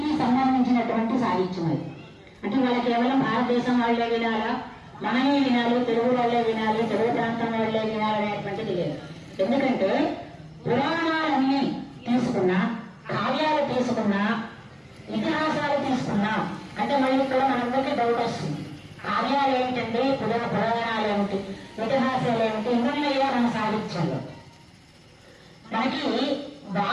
సంబంధించినటువంటి సాహిత్యం అది. అంటే వాళ్ళ కేవలం భారతదేశం వాళ్ళే వినాలా, మనమే వినాలి, తెలుగు వాళ్ళే వినాలి, తెలుగు ప్రాంతం వాళ్ళే వినాలి అనేటువంటిది లేదు. ఎందుకంటే పురాణాలన్నీ తీసుకున్నా, కావ్యాలు తీసుకున్నా, ఇతిహాసాలు తీసుకున్నా అంటే మళ్ళీ ఇక్కడ మనందరికీ డౌట్ వస్తుంది. కావ్యాలు ఏమిటండి, పురాణాలు ఏమిటి, ఇతిహాసాలు ఏమిటి, ఇందులో మన సాహిత్యంలో మనకి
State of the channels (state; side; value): identical; both; correlation 1.00